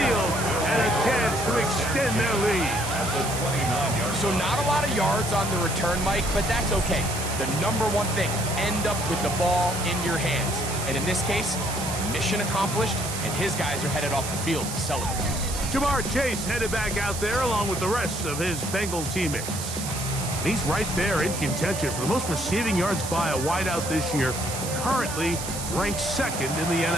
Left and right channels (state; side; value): noise; right; hiss, 7 dB below the sound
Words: and a chance to extend their lead. So not a lot of yards on the return, Mike, but that's okay. The number one thing, end up with the ball in your hands. And in this case, mission accomplished, and his guys are headed off the field to celebrate. Jamar Chase headed back out there along with the rest of his Bengal teammates. And he's right there in contention for the most receiving yards by a wideout this year, currently ranked 2nd in the